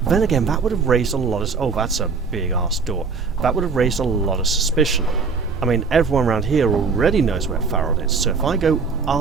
Then again, that would have raised a lot of... Oh, that's a big-ass door. That would have raised a lot of suspicion. I mean, everyone around here already knows where Farrod is, so if I go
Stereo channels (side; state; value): left; quieter; 5.0 dB